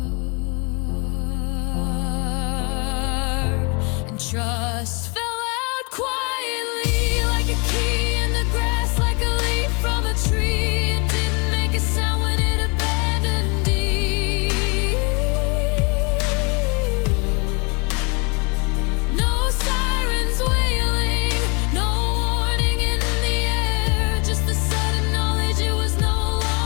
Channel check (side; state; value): right; quieter; 31.9 dB